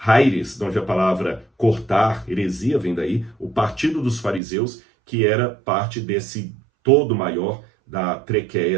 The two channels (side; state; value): left; drops out; at 4.4 s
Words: de onde a palavra cortar, heresia vem daí, o partido dos fariseus, que era parte desse todo maior da